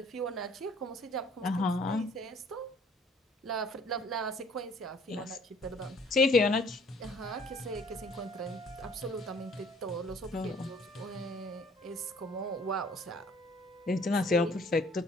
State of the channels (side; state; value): both; normal; correlation 0.57